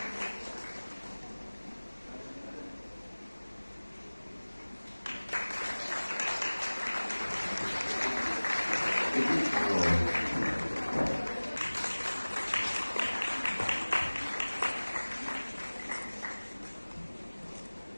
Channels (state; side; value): inverted; both; correlation -1.00